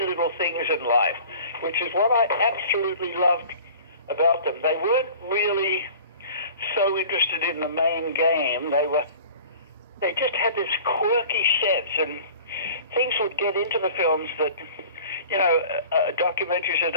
little things in life, which is what I absolutely loved about them. They weren't really so interested in the main game. They just had this quirky sense, and things would get into the films that, documentaries that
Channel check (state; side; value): inverted; both; correlation -0.44